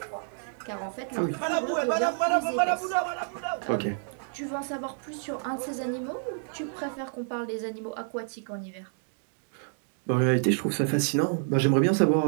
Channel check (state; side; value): silent; left; digital silence